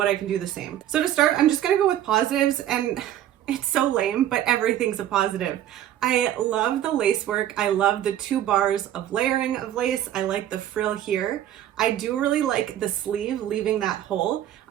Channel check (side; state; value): left; quieter; 11.8 dB